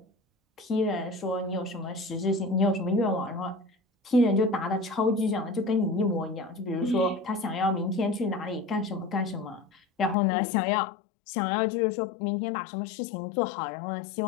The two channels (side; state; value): right; drops out; at 10.2 s